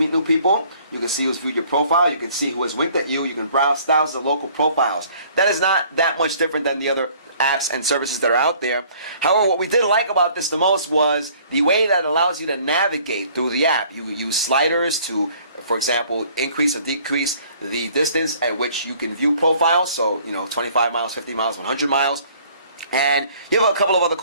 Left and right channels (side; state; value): both; inverted; correlation -0.56